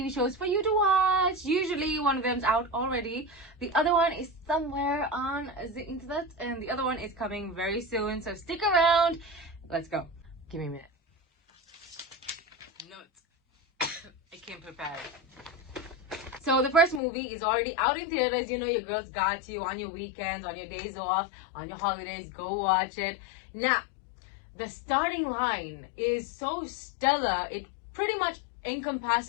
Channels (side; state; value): right; drops out; at 17.0 s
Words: shows for you to watch. Usually one of them's out already, the other one is somewhere on the internet, and the other one is coming very soon, so stick around. Let's go. Give me a minute. Notes. I came prepared. So the first movie is already out in theaters. You know your girls got you on your weekends, on your days off, on your holidays. Go watch it. Now, the starting line is so stellar, it pretty much